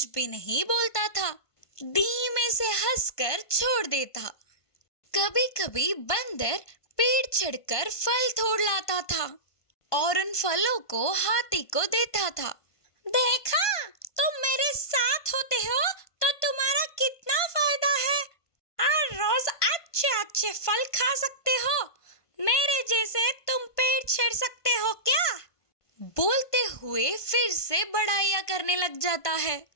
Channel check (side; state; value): right; late; 1.5 ms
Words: भी नहीं बोलता था। धीमे से हंसकर छोड़ देता। कभी कभी बंदर पेड़ चढ़कर फल तोड़ लाता था और उन फलों को हाथी को देता था। देखा, तुम मेरे साथ होते हो तो तुम्हारा कितना फायदा है। हर रोज अच्छे अच्छे फल खा सकते हो। मेरे जैसे तुम पेड़ छेड़ सकते हो क्या? बोलते हुए फिर से बड़ाइयाँ करने लग जाता है।